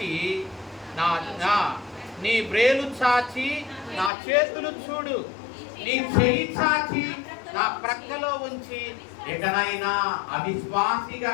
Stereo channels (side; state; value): right; drops out; at 4.1 s